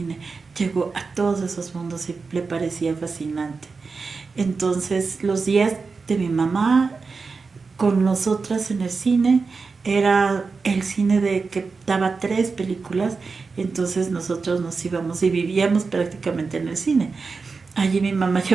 llegó a todos esos mundos y le parecía fascinante. Entonces los días de mi mamá con nosotras en el cine. Era el cine de que daba 3 películas, entonces nosotros nos íbamos y vivíamos prácticamente en el cine. Allí mi mamá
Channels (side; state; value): left; quieter; 4.6 dB